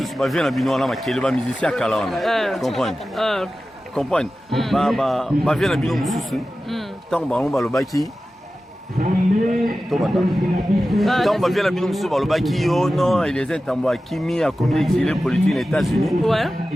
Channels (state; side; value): normal; both; correlation 0.94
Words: va venir à Bilon, on va qui est le musicien à Kalan. Comprendre. Comprendre. Va venir à Bilon, tant on va le baki. Tant on va venir à Bilon, on va le baki. Oh non, il les est en bois. Kimi a commis exilé politique aux États-Unis.